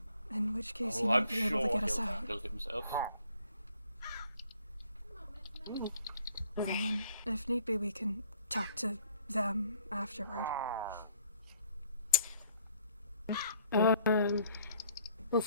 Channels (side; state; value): both; inverted; correlation -0.61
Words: In which case he Oh, might I'm be sure able to get us he'll out. handle himself. And then, if need be, we can talk to them afterward. We'll